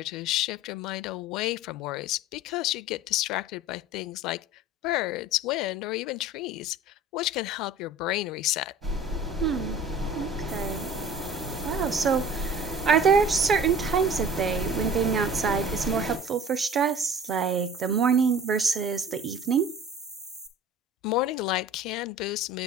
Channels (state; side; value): normal; both; correlation 0.43